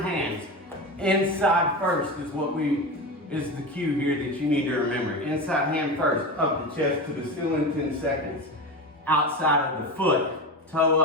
hands. Inside first is is the cue here that you need to remember. Inside hand first, up the chest to the ceiling, 10 seconds. Outside of the foot, toe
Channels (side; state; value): both; normal; correlation 0.23